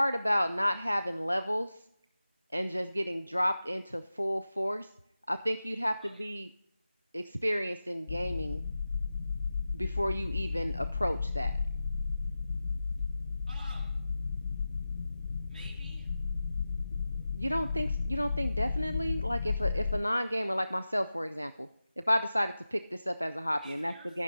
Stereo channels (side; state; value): both; inverted; correlation -0.94